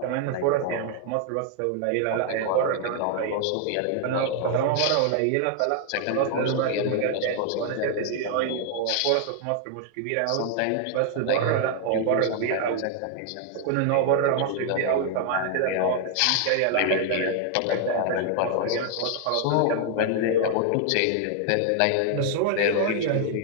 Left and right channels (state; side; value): different; both; correlation 0.00